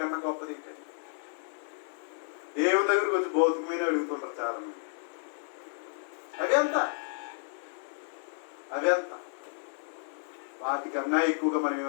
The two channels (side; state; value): right; silent; digital silence